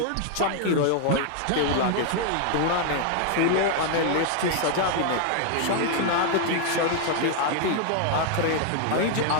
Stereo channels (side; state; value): both; different; correlation 0.00